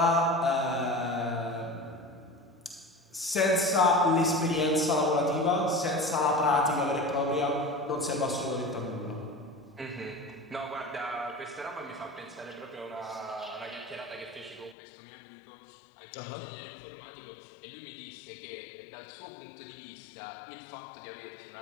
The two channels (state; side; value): drops out; right; at 14.8 s